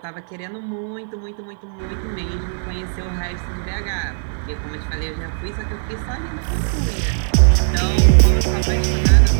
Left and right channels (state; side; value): silent; left; 60 dB below the other